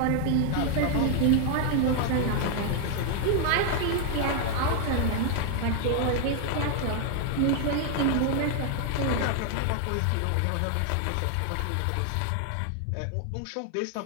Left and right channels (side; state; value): both; different; correlation 0.00